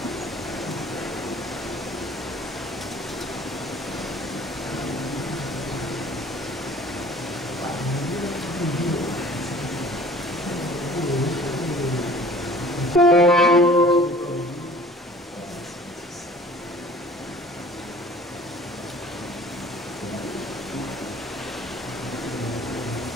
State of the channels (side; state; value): both; normal; correlation 0.48